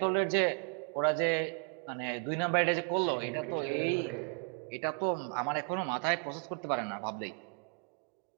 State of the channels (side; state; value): left; quieter; 36.8 dB